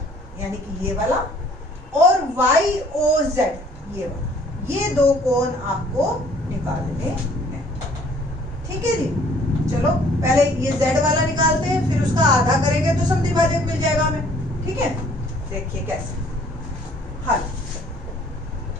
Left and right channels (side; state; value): both; normal; correlation 0.58